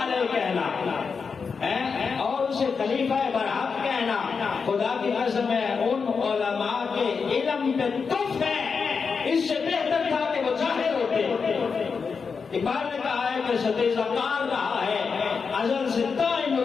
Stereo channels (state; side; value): quieter; right; 5.4 dB